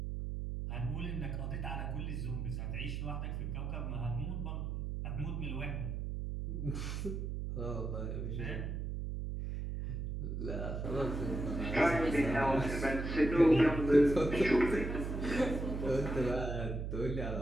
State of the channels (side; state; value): right; noise; hum, 3 dB below the sound